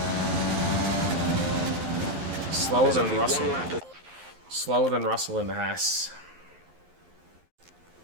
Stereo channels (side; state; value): left; late; 11 ms